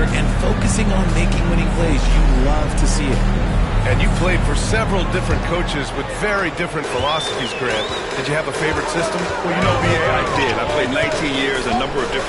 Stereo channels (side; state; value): both; identical; correlation 1.00